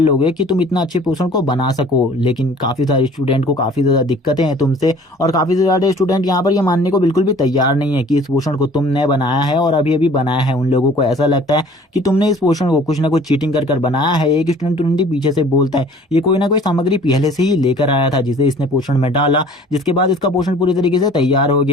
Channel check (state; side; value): normal; both; correlation 0.50